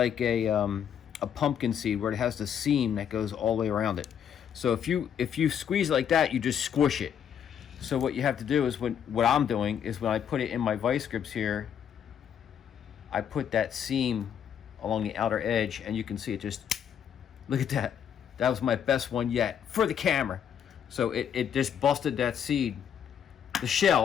a pumpkin seed where it has the seam that goes all the way around it. So if you squeeze it like that, you just squish it. So what you have to do is what I'm doing is when I put it in my vice grips here, I put that seam along the outer edge, and you can see it just, look at that. That was my best one yet for the camera. So it just busted that seed, the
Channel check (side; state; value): right; quieter; 8.6 dB